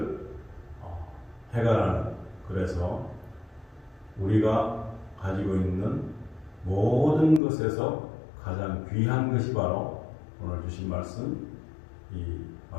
해결하는, 그래서 우리가 가지고 있는 모든 것에서 가장 귀한 것이 바로 오늘 주신 말씀, 이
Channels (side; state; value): right; drops out; at 7.4 s